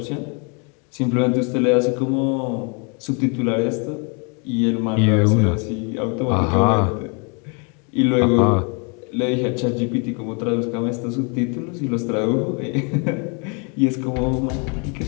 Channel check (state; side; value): quieter; right; 35.3 dB